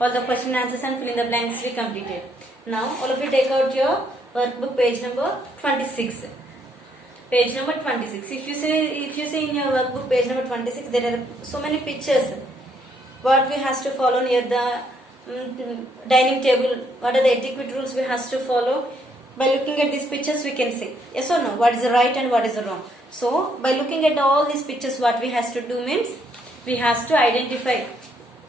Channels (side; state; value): both; normal; correlation 0.71